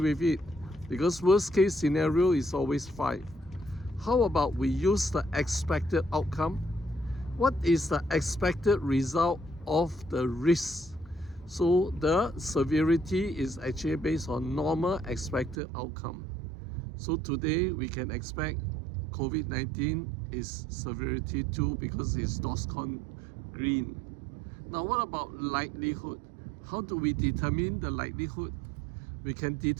with it, because worst case scenario is always 5. How about we use the expected outcome? What is the expected result of the risk? So the severity is actually based on normal expected outcome. So today we can expect COVID-19 is severity 2 because it's DORSCON green. Now what about likelihood? How do we determine the likelihood? We can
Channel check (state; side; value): drops out; left; at 15.6 s